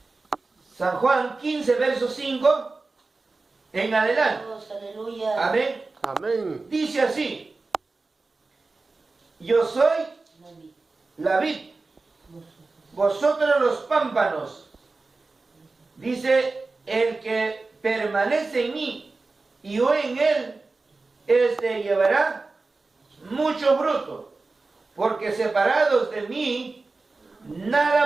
San Juan 15, verso 5 en adelante. Dios, aleluya. Amén. Amén. Dice así, yo soy la vid, vosotros los pámpanos. Dice, el que permanece en mí y yo en él, este llevará mucho fruto, porque separados de mí,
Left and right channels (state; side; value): quieter; left; 3.7 dB